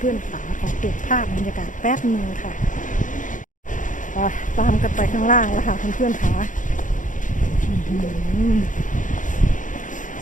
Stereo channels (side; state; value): right; late; 0.37 ms